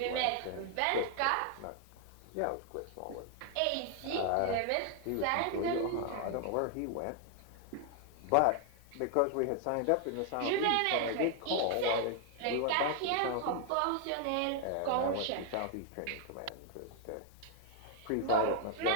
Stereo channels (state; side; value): different; both; correlation 0.00